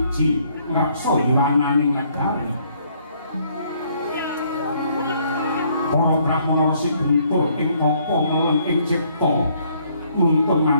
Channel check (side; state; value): both; inverted; correlation -0.66